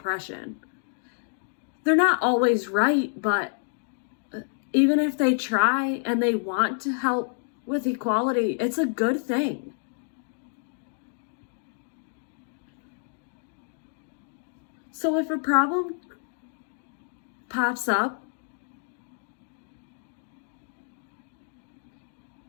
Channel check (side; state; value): right; silent; 59 dB below the other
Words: They're not always right, but even if they try and they want to help with equality, it's a good thing. So if a problem pops up,